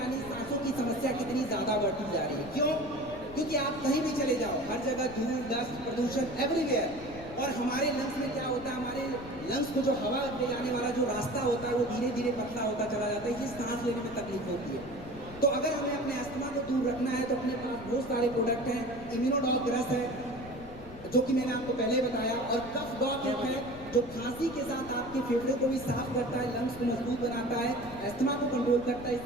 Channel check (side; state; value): left; noise; rumble, 16 dB below the sound